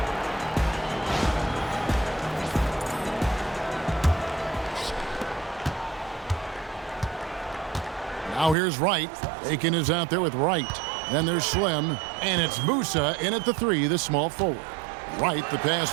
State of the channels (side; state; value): left; drops out; at 8.6 s